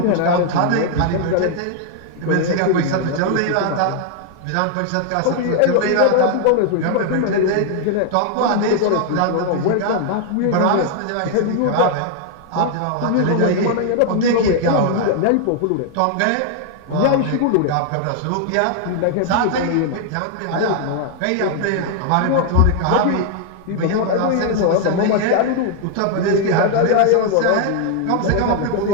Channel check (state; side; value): different; both; correlation 0.00